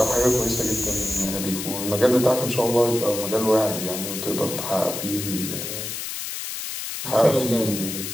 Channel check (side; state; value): left; noise; hiss, 6 dB below the sound